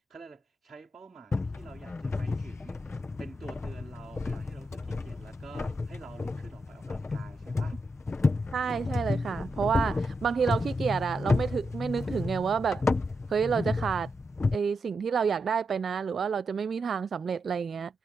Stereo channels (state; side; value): normal; both; correlation 0.85